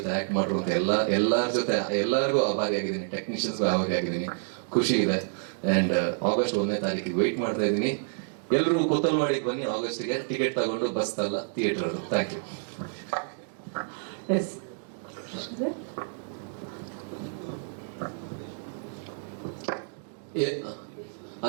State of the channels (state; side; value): silent; left; digital silence